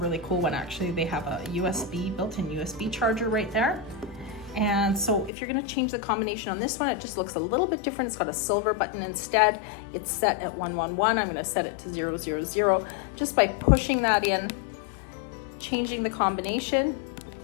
cool one actually. They have a USB, built-in USB charger right there. And so if you're gonna change the combination on this one, it just looks a little bit different. It's got a silver button instead. It's set at 111. I'm gonna set it to 000. Just by pushing that in, changing the combination,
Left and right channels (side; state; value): right; drops out; at 5.3 s